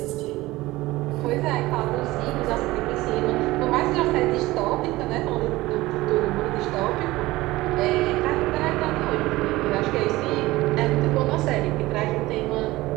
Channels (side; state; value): left; quieter; 18.8 dB